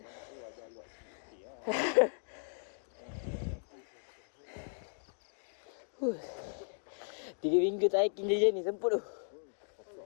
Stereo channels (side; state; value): right; silent; digital silence